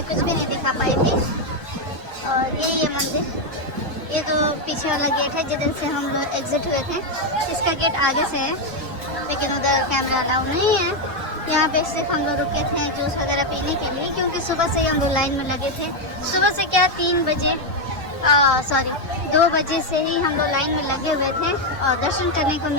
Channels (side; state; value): both; normal; correlation 0.04